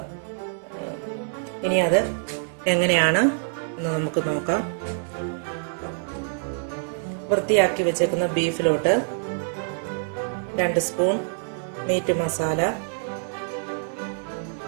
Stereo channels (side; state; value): left; silent; digital silence